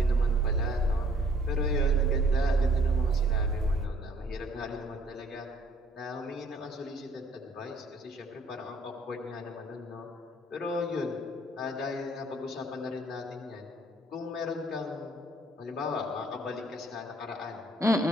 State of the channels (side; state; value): both; normal; correlation 0.60